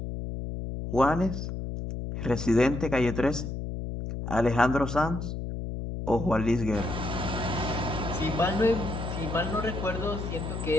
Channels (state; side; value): noise; left; hum, 5 dB below the sound